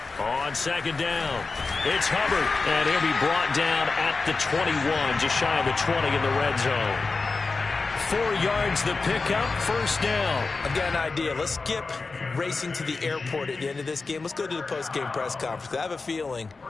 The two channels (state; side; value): quieter; right; 4.1 dB